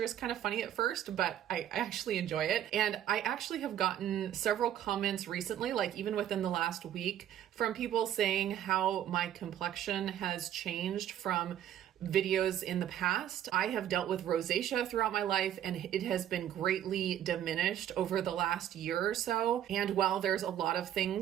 is kind of funny at first, but I actually enjoy it. And I actually have gotten several comments recently, like even within the last week, from people saying how my complexion has changed from videos in the past. I have dealt with rosacea throughout my life, and it has been greatly diminished over the last year or so. And while there's a lot of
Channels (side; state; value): left; quieter; 11.0 dB